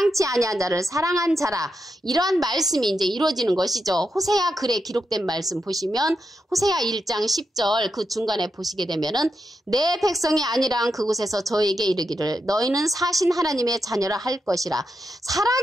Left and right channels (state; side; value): normal; both; correlation 0.86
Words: 아니한 자를 사랑한 자라, 이러한 말씀이 이제 이루어지는 것이죠. 호세아 글에 기록된 말씀 보시면 호세아 1장 10절 그 중간에 보시게 되면은 내 백성이 아니란 그곳에서 저에게 이르기를 너희는 사신 하나님의 자녀라 할 것이라,